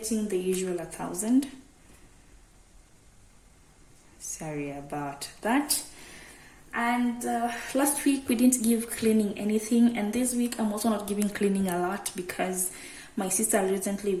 the usual 1,000. Sorry about that. And last week we didn't give cleaning anything, and this week I'm also not giving cleaning a lot because my sister recently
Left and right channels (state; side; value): identical; both; correlation 1.00